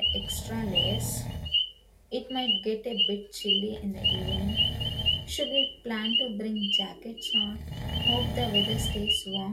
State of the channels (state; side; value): identical; both; correlation 1.00